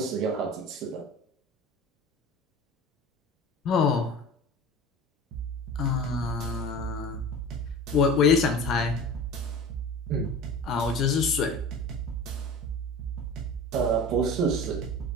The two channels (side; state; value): both; normal; correlation 0.36